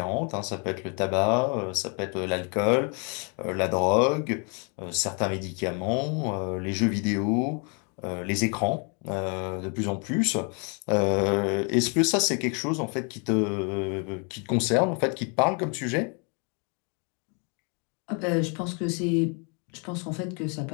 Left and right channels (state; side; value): quieter; right; 36.4 dB